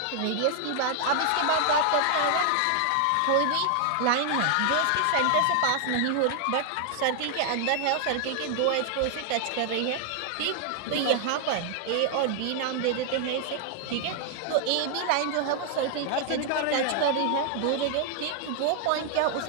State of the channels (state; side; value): different; both; correlation 0.00